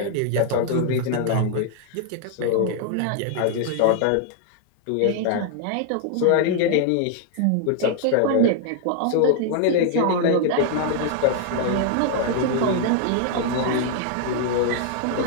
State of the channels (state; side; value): different; both; correlation 0.00